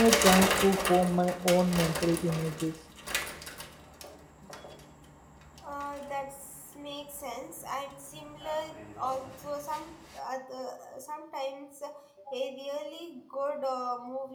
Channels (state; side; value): identical; both; correlation 1.00